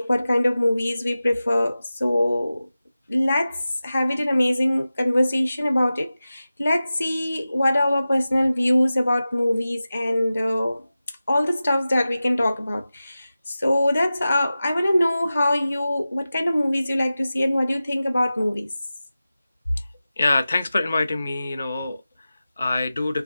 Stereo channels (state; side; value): inverted; both; correlation -0.95